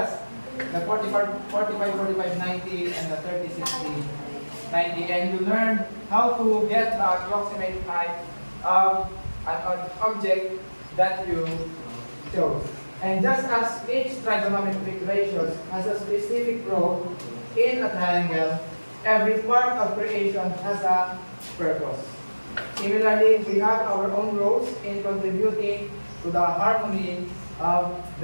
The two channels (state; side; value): inverted; both; correlation -1.00